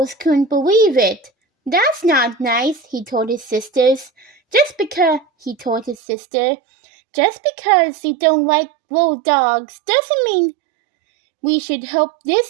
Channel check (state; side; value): drops out; left; at 6.0 s